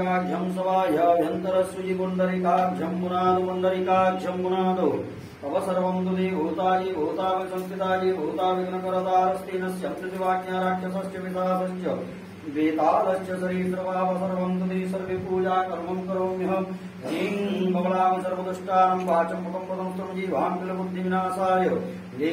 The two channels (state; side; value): identical; both; correlation 1.00